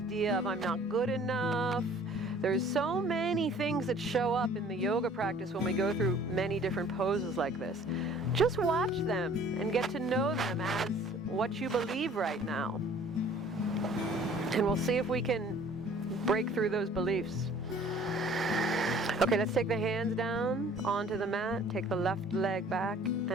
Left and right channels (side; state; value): both; normal; correlation 0.52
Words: of I'm not good enough. There's so many things that show up in the yoga practice when we go through many different poses like this. Just watch them and get to know them as what you believe right now. And we'll see if we can break through those beliefs. Okay, let's take the hands down onto the mat. Take the left leg back